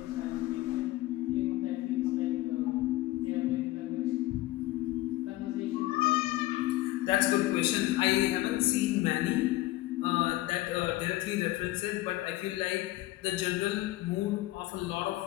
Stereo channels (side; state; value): right; quieter; 17.4 dB